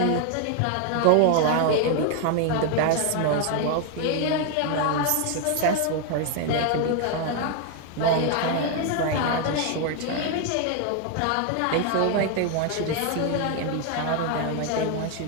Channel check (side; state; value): both; different; correlation 0.01